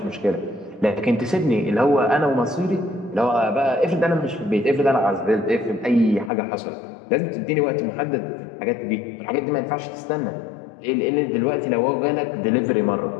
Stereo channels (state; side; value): drops out; right; at 6.3 s